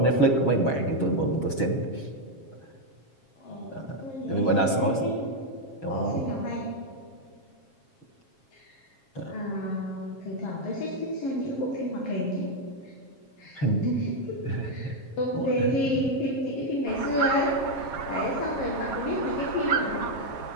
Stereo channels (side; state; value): right; late; 7.4 ms